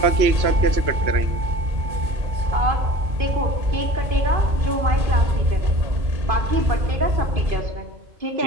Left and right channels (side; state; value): left; late; 2.5 ms